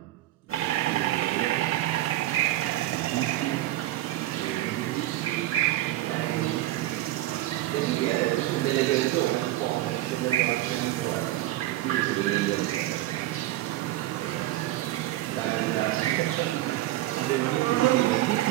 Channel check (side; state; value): left; quieter; 15.5 dB